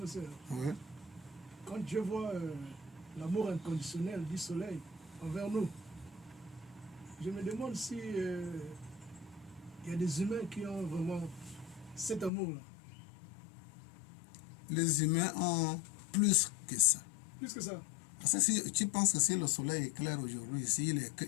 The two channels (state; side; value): drops out; right; at 12.3 s